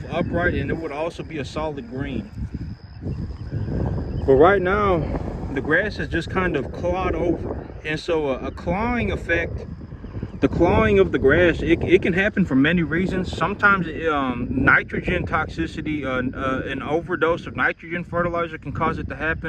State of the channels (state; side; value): identical; both; correlation 1.00